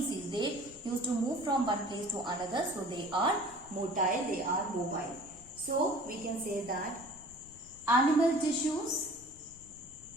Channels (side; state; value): left; noise; rumble, 22 dB below the sound